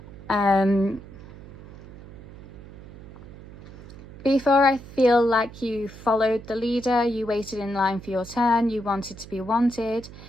Before, I feel like you followed the leader, you waited in line for your turn, you wanted to be wanted.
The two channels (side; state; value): right; noise; hum, 16 dB below the sound